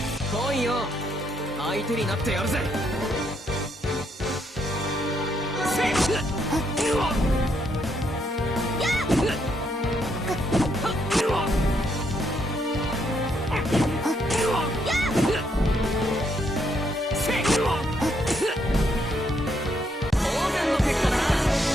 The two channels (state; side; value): normal; both; correlation 0.75